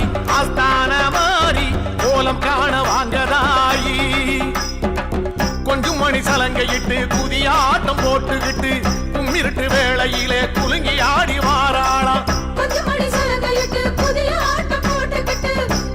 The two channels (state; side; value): identical; both; correlation 1.00